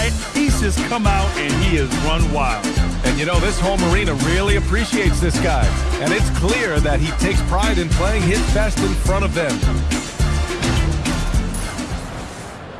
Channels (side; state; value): both; identical; correlation 1.00